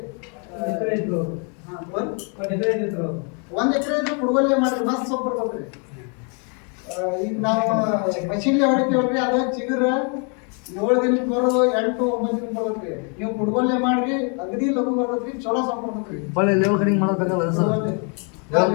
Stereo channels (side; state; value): right; quieter; 38.6 dB